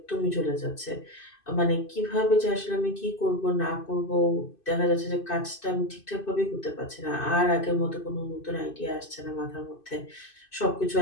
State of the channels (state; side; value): late; right; 2.6 ms